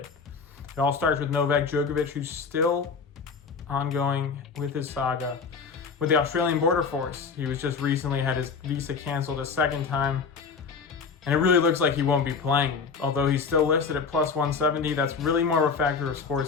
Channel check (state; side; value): quieter; right; 5.3 dB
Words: It all starts with Novak Djokovic, who's still ongoing with his saga with the Australian border force. He was just recently had his visa canceled a second time, and it really looks like he won't be playing. Although he's still listed at plus 170, that's really more of a factor of